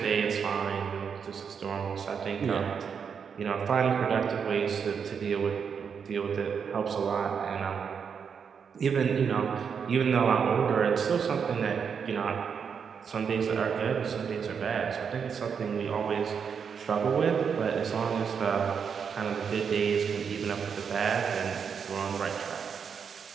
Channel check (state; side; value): quieter; left; 6.7 dB